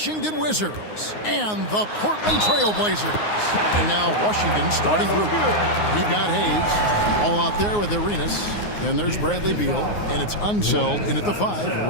Wizards and the Portland Trail Blazers. And now Washington's starting group. We've got Hayes, all out there with Arenas. Then there's Bradley Beal, and it's Unseld in at the 5,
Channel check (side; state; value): right; late; 9.6 ms